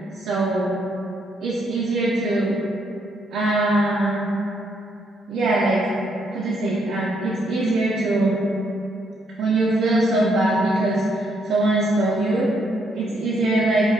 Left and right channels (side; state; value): both; normal; correlation 0.73